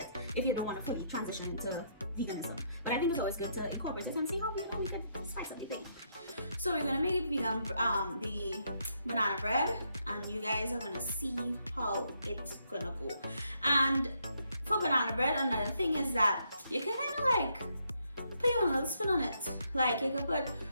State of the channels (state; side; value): inverted; both; correlation -0.75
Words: if you don't want to fully transition into veganism. But I think it's always good to incorporate it and see how we can spice up the thing. So we're gonna make vegan the banana bread, and you guys are gonna see how it's gonna go. And for banana bread, another thing is that you can kind of like put your own little spin on it. Like you could put